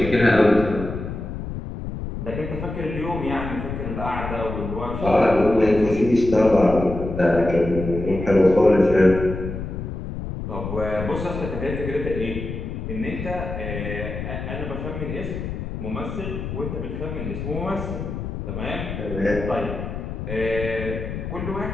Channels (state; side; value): noise; left; rumble, 6 dB below the sound